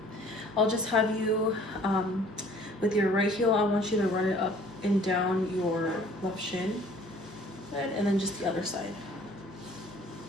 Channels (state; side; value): normal; both; correlation 0.54